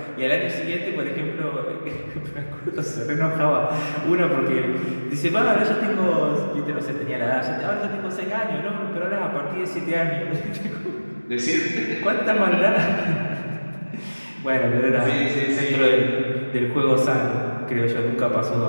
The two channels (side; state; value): both; inverted; correlation -1.00